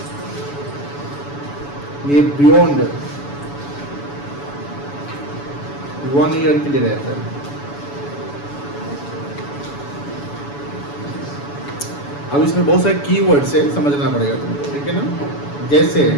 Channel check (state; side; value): late; right; 7.0 ms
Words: ये बियॉन्ड 1 ईयर के लिए रहता है। अब इसमें बहुत सारे कीवर्ड्स है, समझना पड़ेगा तुमको, ठीक है ना? जैसे